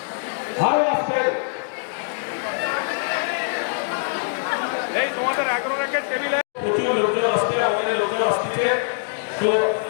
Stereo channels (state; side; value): silent; right; digital silence